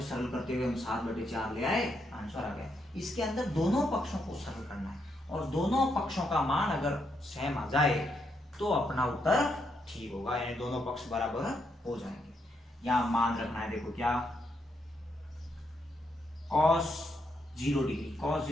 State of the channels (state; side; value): normal; both; correlation 0.78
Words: सरल करते हुए हम 7/4 ले आए, आंसर आ गया। इसके अंदर दोनों पक्षों को सरल करना है और दोनों पक्षों का मान अगर सेम आ जाए तो अपना उत्तर ठीक होगा, यानी दोनों पक्ष बराबर हो जाएंगे। यहाँ मान रखना है, देखो क्या cos 0 डिग्री, cos